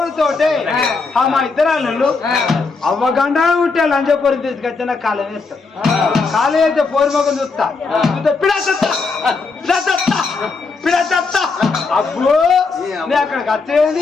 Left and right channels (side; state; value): right; quieter; 4.3 dB